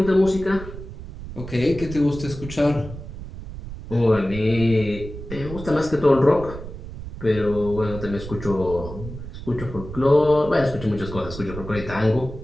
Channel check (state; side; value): noise; right; rumble, 11 dB below the sound